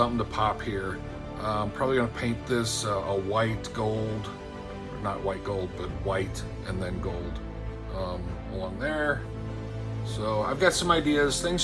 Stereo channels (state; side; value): identical; both; correlation 1.00